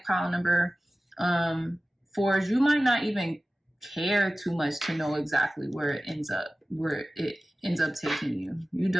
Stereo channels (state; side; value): normal; both; correlation 0.97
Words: pile number 4 is you might not even care too much to know exactly where it ends up taking you. You